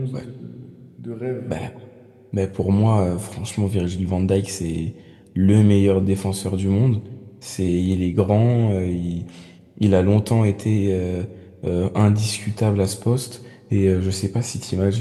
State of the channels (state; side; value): identical; both; correlation 1.00